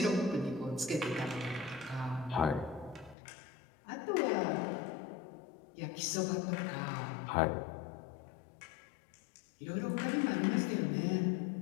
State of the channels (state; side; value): drops out; right; at 3.2 s